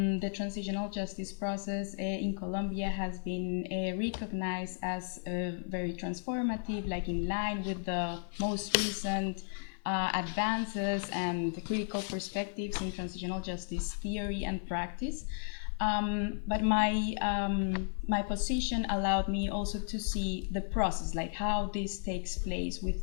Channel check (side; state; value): right; silent; 55 dB below the other